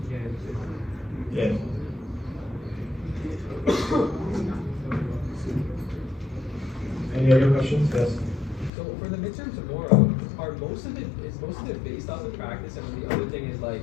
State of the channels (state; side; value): drops out; right; at 8.7 s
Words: Yeah. Any other questions? Yes. So for the midterm tomorrow, is most of it based off of practice, and the other thing is like